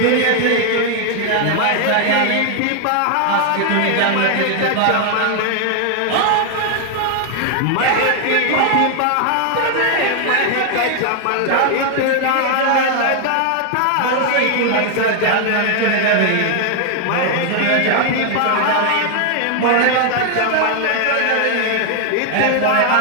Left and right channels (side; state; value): both; different; correlation 0.00